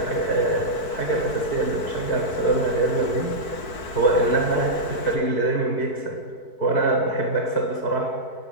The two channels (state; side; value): late; right; 4.6 ms